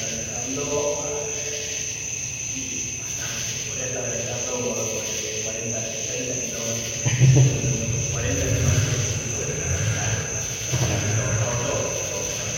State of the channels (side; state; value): both; identical; correlation 1.00